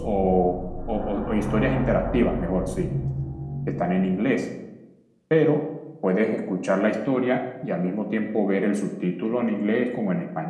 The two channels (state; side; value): identical; both; correlation 1.00